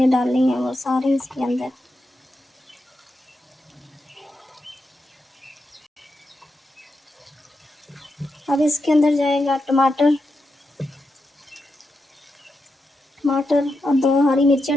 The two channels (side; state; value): both; normal; correlation 0.86